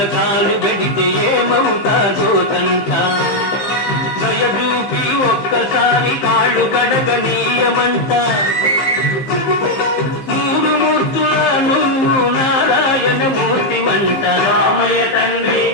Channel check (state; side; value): late; right; 15 ms